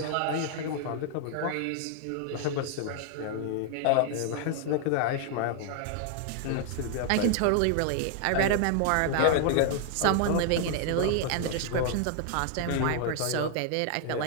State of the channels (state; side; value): different; both; correlation 0.00